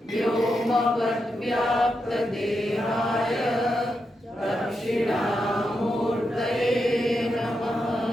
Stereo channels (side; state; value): both; normal; correlation 0.86